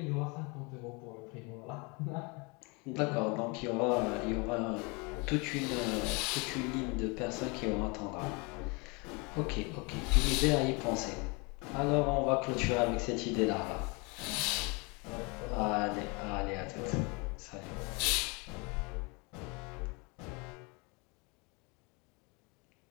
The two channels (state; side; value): quieter; right; 29.7 dB